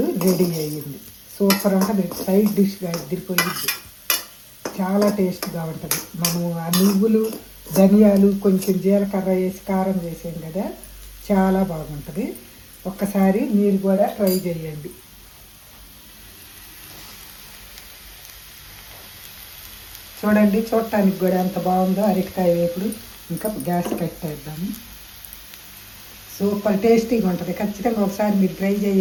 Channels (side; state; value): both; identical; correlation 1.00